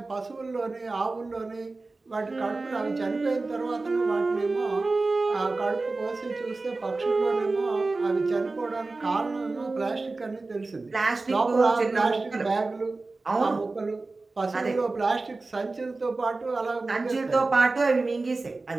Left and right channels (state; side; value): quieter; left; 3.5 dB